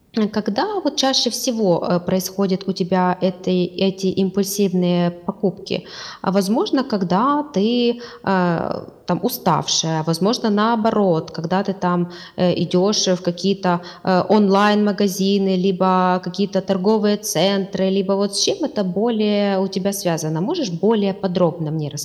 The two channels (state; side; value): identical; both; correlation 1.00